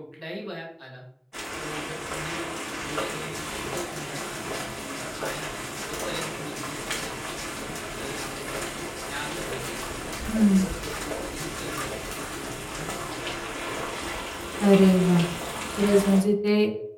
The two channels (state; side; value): identical; both; correlation 1.00